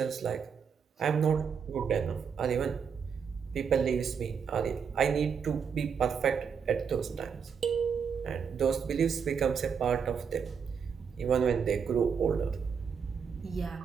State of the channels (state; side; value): quieter; left; 6.7 dB